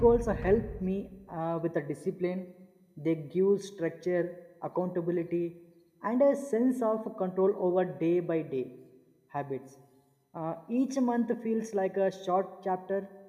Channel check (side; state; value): both; identical; correlation 1.00